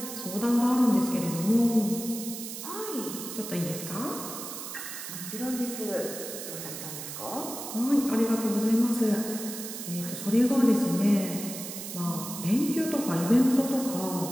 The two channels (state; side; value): noise; right; hiss, 8 dB below the sound